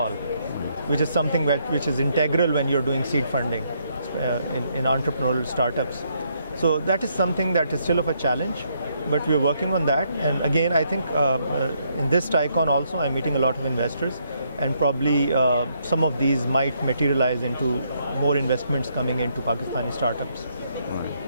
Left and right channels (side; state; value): both; inverted; correlation -0.73